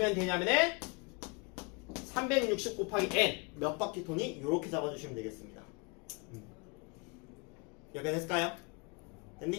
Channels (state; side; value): quieter; right; 31.8 dB